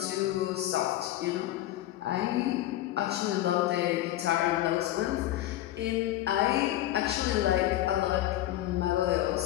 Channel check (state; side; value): quieter; right; 14.3 dB